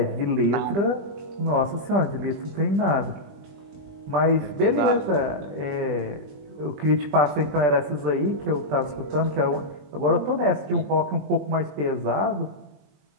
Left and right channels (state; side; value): late; left; 20 ms